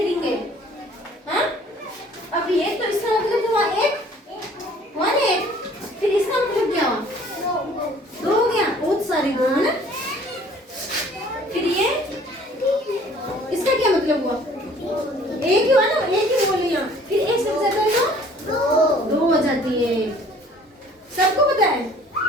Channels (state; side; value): normal; both; correlation 0.54